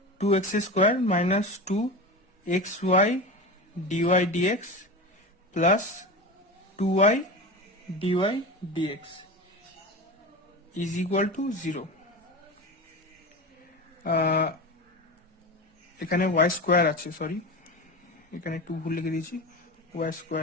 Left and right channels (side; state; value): both; normal; correlation 0.26